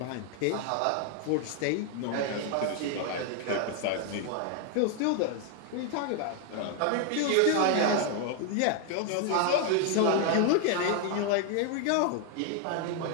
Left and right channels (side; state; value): both; different; correlation 0.00